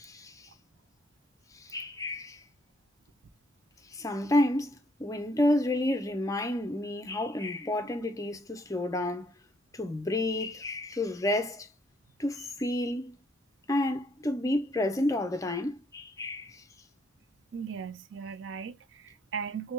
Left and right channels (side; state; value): both; normal; correlation 0.68